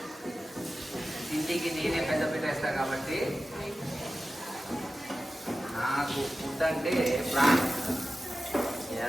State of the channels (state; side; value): normal; both; correlation 0.94